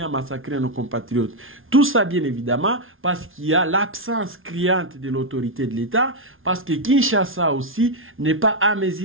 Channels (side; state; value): left; late; 0.59 ms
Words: à massacrer nos compatriotes. Tout ça, bien évidemment, parce qu'il y a l'absence criante de l'autorité de l'État, parce que Kinshasa aussi n'est pas à